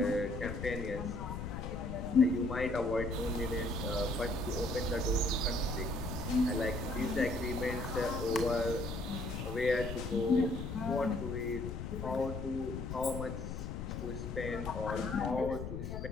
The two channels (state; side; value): noise; left; rumble, 6 dB below the sound